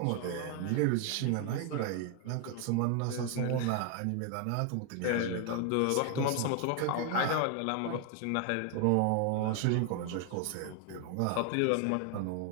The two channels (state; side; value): different; both; correlation 0.01